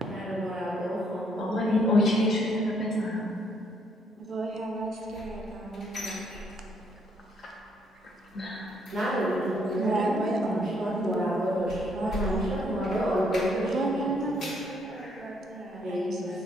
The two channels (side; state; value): both; normal; correlation 0.69